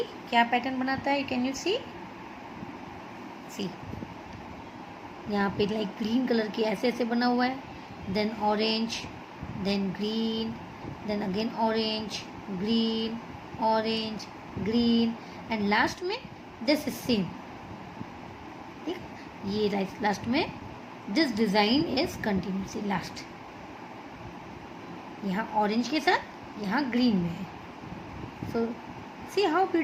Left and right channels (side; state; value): both; identical; correlation 1.00